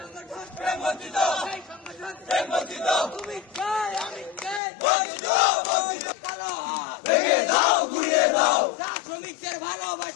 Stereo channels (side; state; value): right; drops out; at 4.6 s